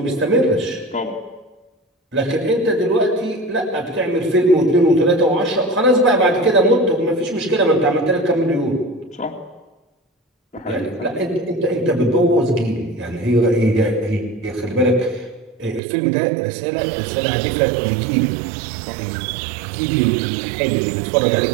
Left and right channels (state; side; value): drops out; left; at 15.8 s